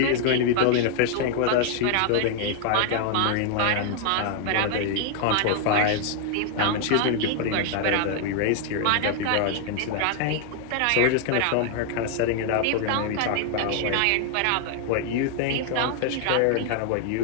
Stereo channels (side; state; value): both; different; correlation 0.00